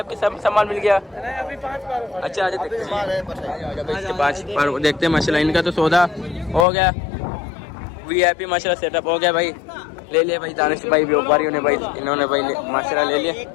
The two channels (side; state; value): right; drops out; at 6.7 s